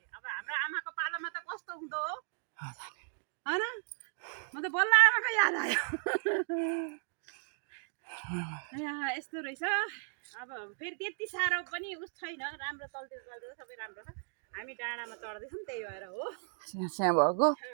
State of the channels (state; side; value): silent; left; 54 dB below the other